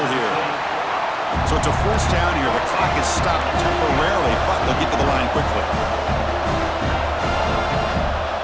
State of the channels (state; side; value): identical; both; correlation 1.00